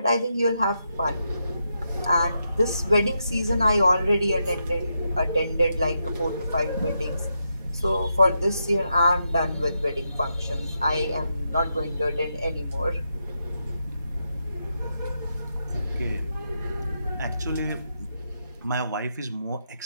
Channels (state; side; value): inverted; both; correlation -0.83